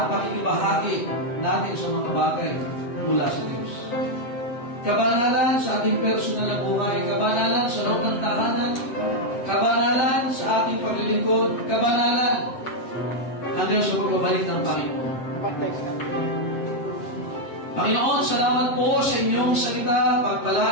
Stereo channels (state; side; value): late; right; 7.7 ms